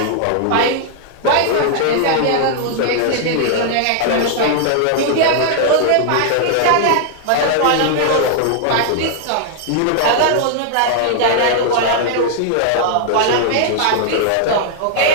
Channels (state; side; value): different; both; correlation 0.00